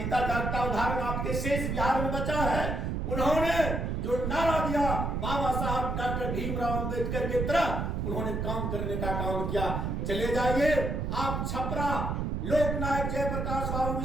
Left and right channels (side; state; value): right; noise; rumble, 1 dB below the sound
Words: जागता उदाहरण आपके शेष बिहार में बचा है। उन्होंने जो नारा दिया बाबा साहब डॉक्टर भीमराव अंबेडकर की तरह, उन्होंने काम करने का काम किया। चले जाइए आप छपरा, लोकनायक जयप्रकाश बाबू